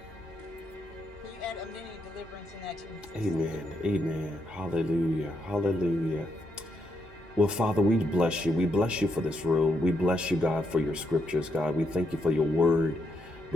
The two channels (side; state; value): both; normal; correlation 0.79